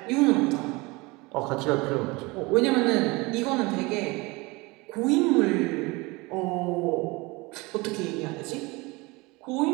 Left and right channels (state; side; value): quieter; left; 24.4 dB